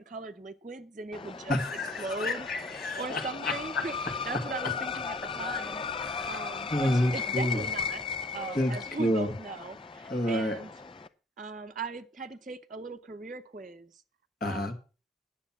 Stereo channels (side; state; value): both; normal; correlation 0.56